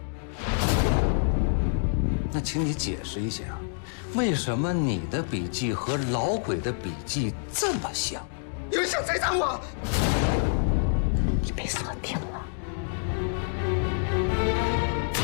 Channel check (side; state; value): right; silent; digital silence